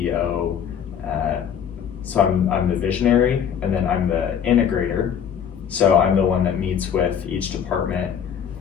So I'm the visionary, and then I'm the integrator. So I'm the one that meets with each department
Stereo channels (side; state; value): right; quieter; 8.2 dB